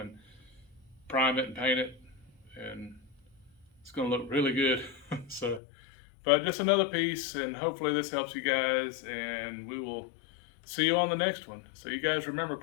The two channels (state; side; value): drops out; right; at 5.6 s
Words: prime it and paint it, and it's going to look really good. So, but just another piece, and hopefully this helps you guys, and we will see you on the next one. So you guys remember,